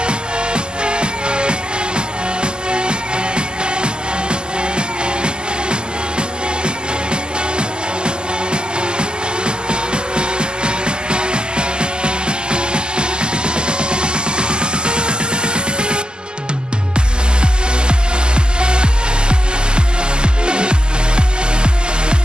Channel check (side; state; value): left; late; 0.047 ms